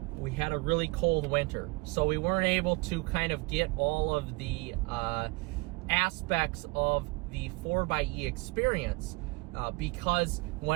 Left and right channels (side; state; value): left; quieter; 25.1 dB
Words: We had a really cold winter, so we weren't able to kind of get all of the aspects of the 4xe experience because